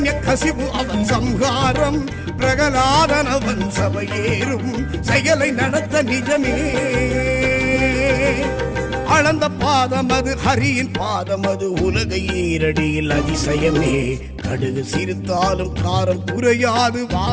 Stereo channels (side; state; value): both; identical; correlation 1.00